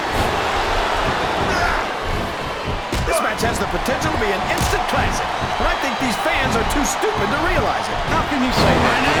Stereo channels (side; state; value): both; identical; correlation 1.00